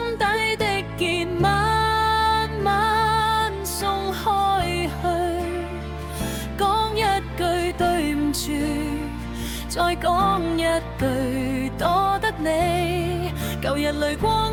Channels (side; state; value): both; identical; correlation 1.00